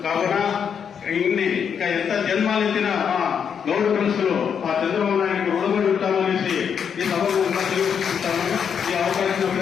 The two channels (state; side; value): quieter; right; 7.4 dB